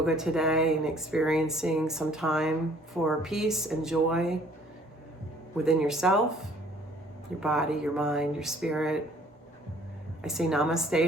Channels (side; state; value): both; normal; correlation 0.57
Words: today and experiencing some time for peace and joy within yourself, your body, your mind, your spirit. I say